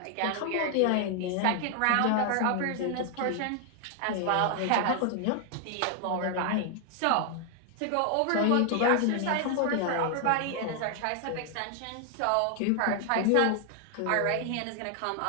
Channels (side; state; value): both; different; correlation 0.00